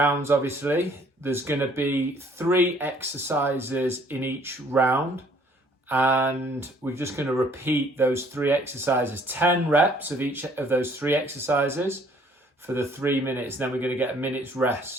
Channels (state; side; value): normal; both; correlation 0.60